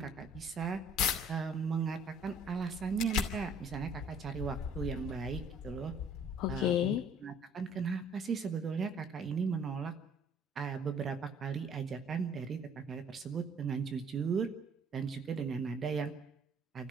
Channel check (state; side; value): normal; both; correlation 0.56